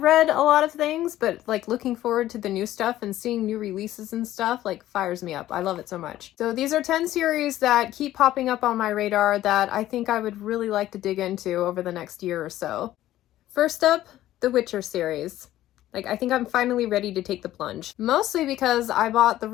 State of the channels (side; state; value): right; quieter; 14.0 dB